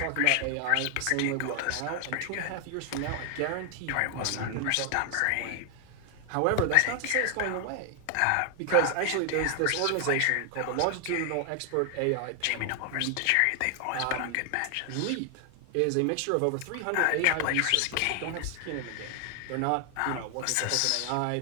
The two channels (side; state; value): both; different; correlation 0.00